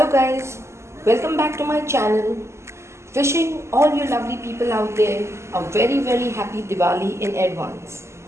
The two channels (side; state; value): left; late; 0.13 ms